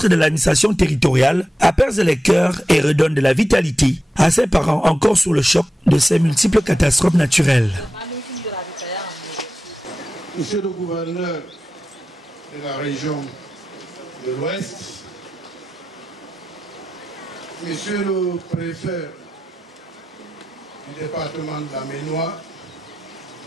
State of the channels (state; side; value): normal; both; correlation 0.92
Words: de l'administration territoriale apaise les cœurs et redonne de la vitalité à ces parents encore sous le choc de ces multiples catastrophes naturelles. Monsieur le gouverneur de la région de l'Ouest, Monsieur le préfet du département de la Ménois,